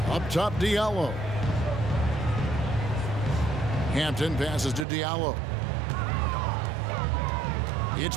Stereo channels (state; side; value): drops out; left; at 4.9 s